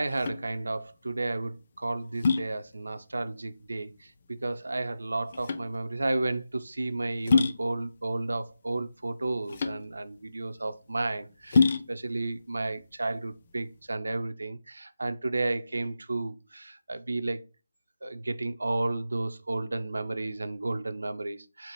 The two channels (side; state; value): both; inverted; correlation -0.91